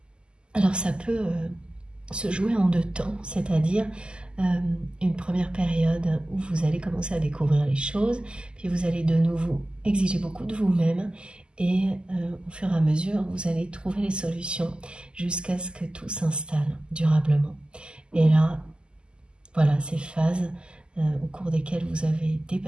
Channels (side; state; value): left; late; 0.049 ms